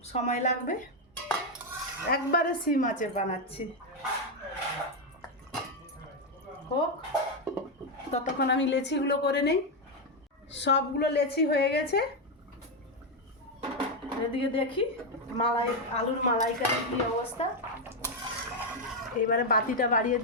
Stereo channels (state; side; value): normal; both; correlation 0.04